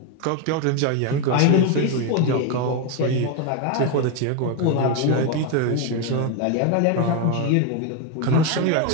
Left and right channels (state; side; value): different; both; correlation 0.02